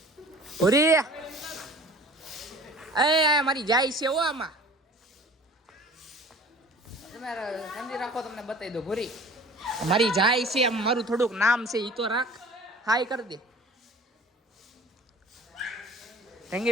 ભૂરી એ મારી જાય છે હો. આમાં તમારે સમજી રાખો, તમને બતાવી દો. ભૂરી મારી જાય છે, આમ મારું થોડુંક નામ છે, ઈ તો રાખ. હાઈ કરી દે.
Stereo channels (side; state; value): both; normal; correlation 0.45